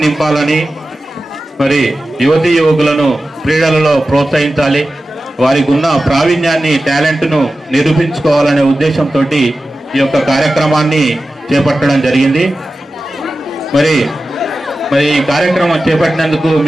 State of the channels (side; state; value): both; normal; correlation 0.94